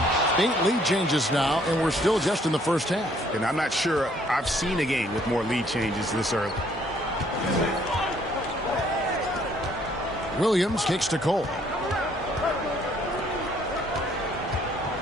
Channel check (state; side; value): normal; both; correlation 0.64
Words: 8 lead changes now, and we're still just in the first half. And I'm not sure I've seen a game with more lead changes this early. Williams kicks to Cole.